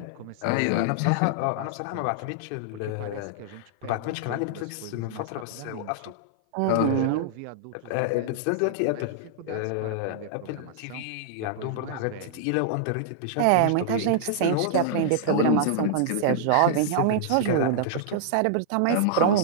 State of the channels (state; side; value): different; both; correlation -0.01